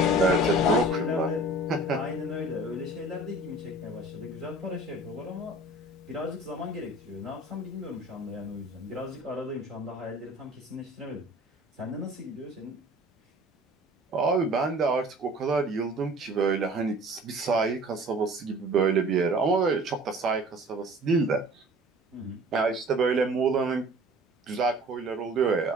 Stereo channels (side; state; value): both; normal; correlation 0.46